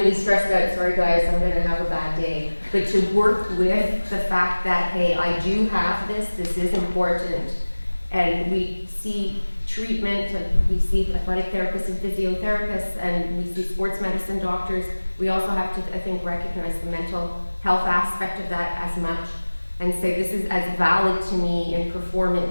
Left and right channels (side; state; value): both; inverted; correlation -1.00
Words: stressed out, sorry guys, I'm going to have a bad day, but to work with the fact that, hey, I do have this is important. And we see treatment, and we see athletic therapists and physiotherapists, and we see sports medicine doctors. We also have to, I think, recognize the mental health aspect of that as much, and say this is as valid to me in